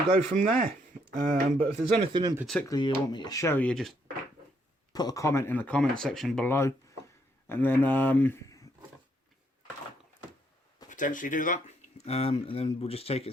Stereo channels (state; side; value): normal; both; correlation 0.72